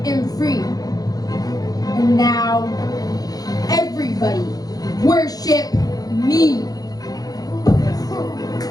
am free. And now, everybody, worship me.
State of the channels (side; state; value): right; late; 0.18 ms